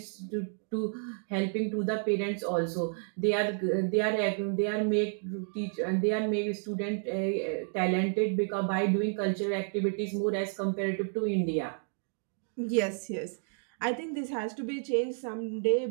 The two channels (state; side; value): silent; left; 57 dB below the other